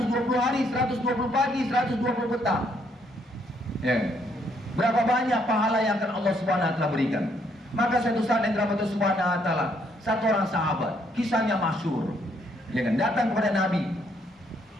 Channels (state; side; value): normal; both; correlation 0.70